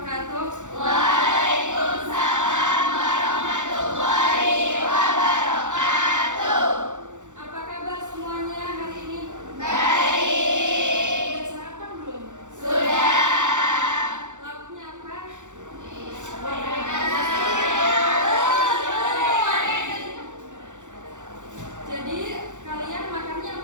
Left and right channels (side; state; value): left; late; 0.85 ms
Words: Waalaikumsalam warahmatullahi wabarakatuh. Apa kabar semuanya hari ini? Baik. Udah sarapan belum? Sudah. Lauknya apa? Jadi kalian makannya